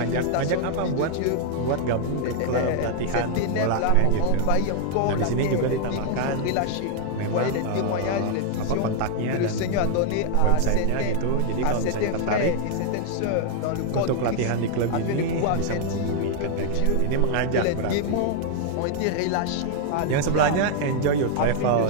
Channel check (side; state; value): both; different; correlation 0.00